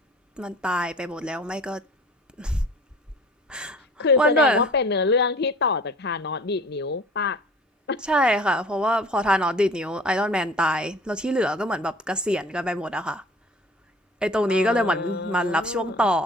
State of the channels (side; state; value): both; normal; correlation 0.46